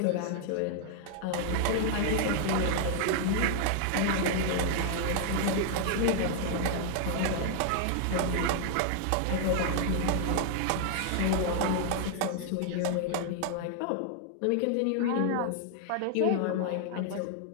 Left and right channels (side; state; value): both; different; correlation 0.00